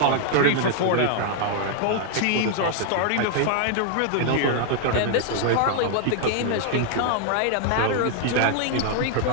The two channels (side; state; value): both; different; correlation 0.00